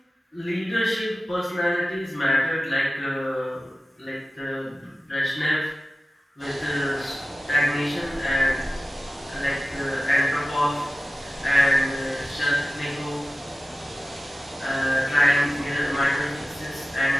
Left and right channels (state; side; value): normal; both; correlation 0.95